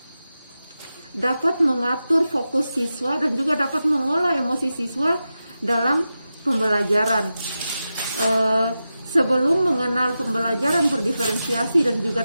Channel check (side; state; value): both; inverted; correlation -0.92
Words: dapat mengatur fokus siswa dan juga dapat mengolah emosi siswa dalam pembelajaran. Sebelum mengenal pembelajaran berdiferensiasi dan juga